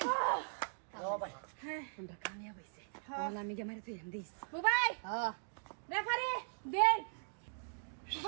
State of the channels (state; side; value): silent; left; digital silence